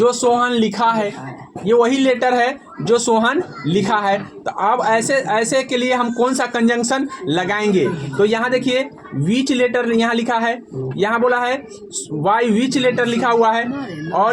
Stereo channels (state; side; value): identical; both; correlation 1.00